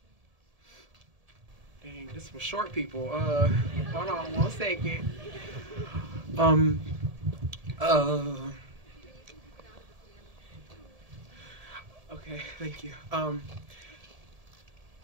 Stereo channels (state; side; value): late; left; 1.7 ms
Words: Dang, this was short, people. Hold on 1 second. Okay, thank you.